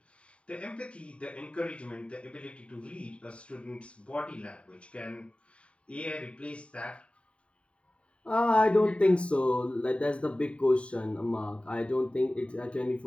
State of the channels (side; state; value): right; late; 0.060 ms